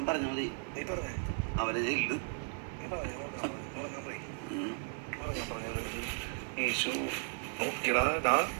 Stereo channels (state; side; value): silent; left; 54 dB below the other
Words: പറഞ്ഞ മതി. നീ പറഞ്ഞേ അവരെ ചെയ്യില്ല. നീ പറഞ്ഞു ഉറങ്ങാൻ പോയി ഉറങ്ങാൻ പറഞ്ഞത് ഈശോ നോക്കിയടാ.